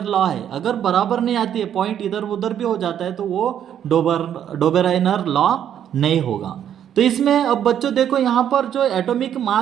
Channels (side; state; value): left; quieter; 9.7 dB